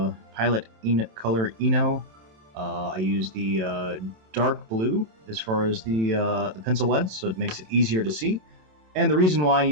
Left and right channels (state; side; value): late; left; 27 ms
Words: Color Eno. I use the dark blue as far as the pencil leads, so it makes it easier to see. And the reason why I